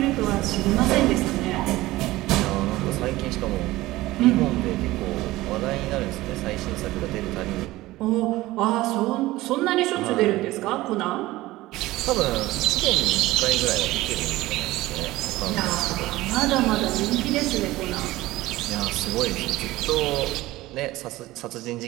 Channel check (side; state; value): left; quieter; 18.0 dB